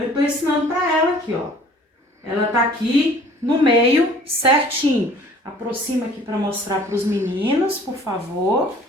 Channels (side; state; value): both; normal; correlation 0.51